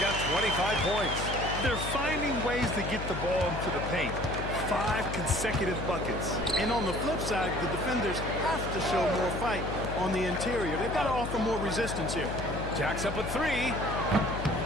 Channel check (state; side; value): noise; left; hum, 6 dB below the sound